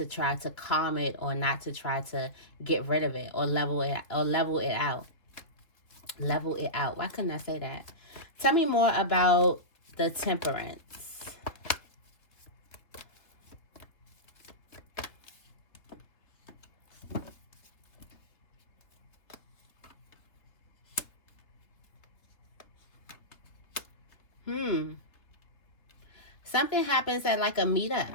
try to calm it, or not to try to get rid of it, or level it out. Level it out. Why couldn't I say that? Tell me more about the Temperance. Something happens at like a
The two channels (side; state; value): right; late; 3.0 ms